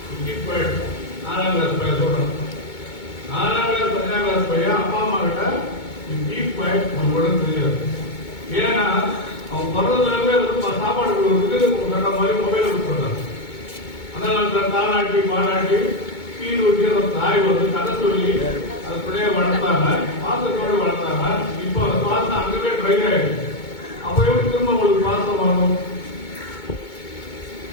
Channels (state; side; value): late; right; 2.2 ms